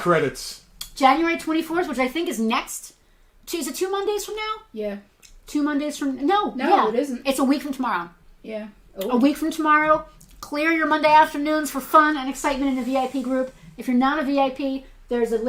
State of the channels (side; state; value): both; identical; correlation 1.00